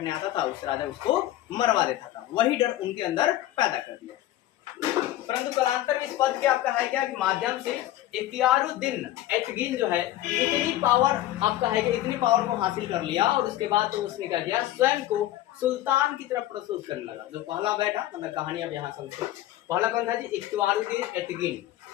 आता था उस राजा उसको मरवा देता था, वही डर उनके अंदर पैदा कर दिया। परंतु कालांतर में इस पद के आपका है क्या कि माध्यम से इख्तियारुद्दीन एतगिन जो है इतनी पावर आपका है कि इतनी पावर को हासिल कर लिया और उसके बाद तो उसने क्या किया, स्वयं को सुल्तान की तरफ प्रस्तुत करने लगा। जो पहला बैठा, मतलब कहानी अब यहाँ समझो। पहला कौन था जी? इख्तियारुद्दीन एतगिन,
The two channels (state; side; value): quieter; right; 14.3 dB